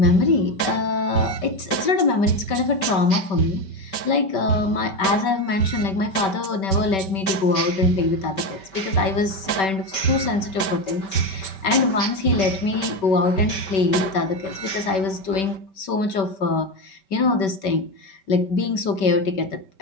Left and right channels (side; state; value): right; late; 5.2 ms